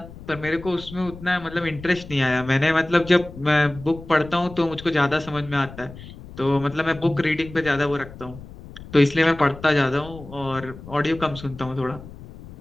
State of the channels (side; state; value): left; noise; rumble, 16 dB below the sound